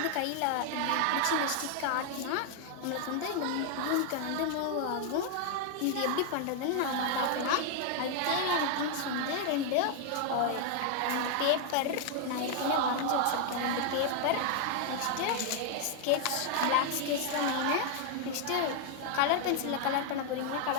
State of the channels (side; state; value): both; different; correlation 0.00